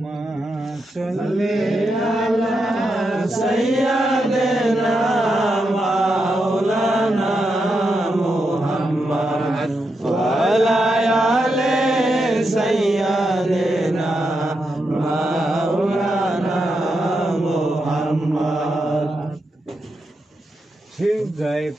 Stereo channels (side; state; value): both; normal; correlation 0.85